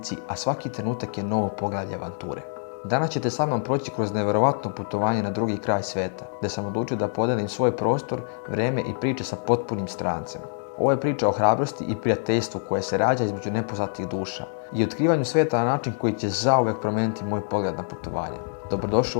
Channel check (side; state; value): right; silent; digital silence